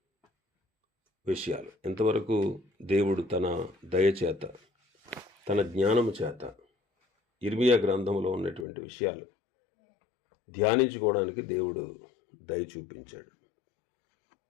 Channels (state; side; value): drops out; right; at 8.7 s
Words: విషయాలు. ఇంతవరకు దేవుడు తన దయచేత, తన జ్ఞానము చేత ఇర్మియా గ్రంథంలో ఉన్నటువంటి విషయాలు ధ్యానించుకోవడానికి దేవుడు దయ చూపించాడు.